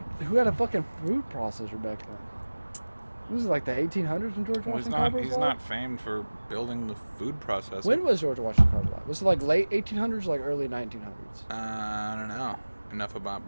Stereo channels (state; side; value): inverted; both; correlation -1.00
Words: Who had a fucking food processor back then? This is like the 1800s when George Washington Carver was He's alive? not famed for building the food processor. When was George Washington Carver alive? Was it like late 1800s or like early 1900s? I don't know enough about